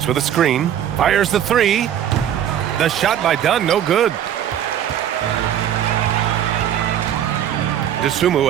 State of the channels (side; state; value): left; quieter; 10.2 dB